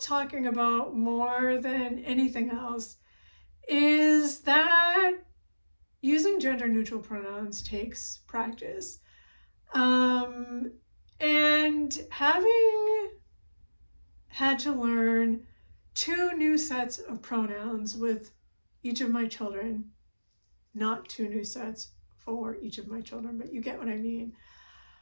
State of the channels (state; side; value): inverted; both; correlation -1.00